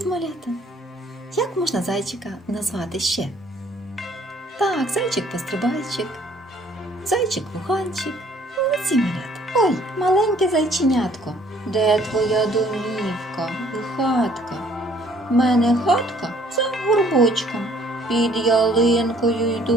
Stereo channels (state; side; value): normal; both; correlation 0.59